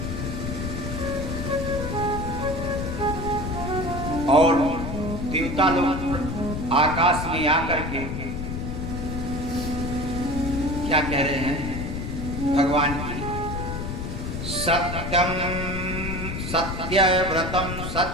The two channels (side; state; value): left; noise; rumble, 4 dB below the sound